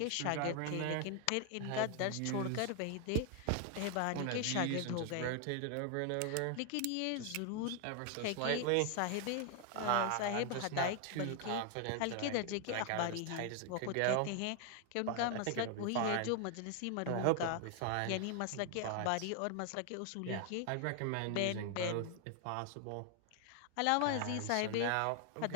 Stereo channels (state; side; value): different; both; correlation 0.00